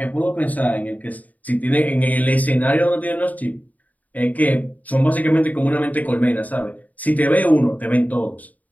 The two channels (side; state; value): right; late; 0.075 ms